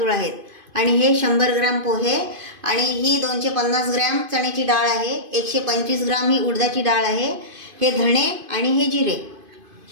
आहेत आणि हे 100 ग्रॅम पोहे आणि ही 250 ग्रॅम चण्याची डाळ आहे, 125 ग्रॅम ही उडदाची डाळ आहे, हे धणे आणि हे जिरे।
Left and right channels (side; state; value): left; late; 2.5 ms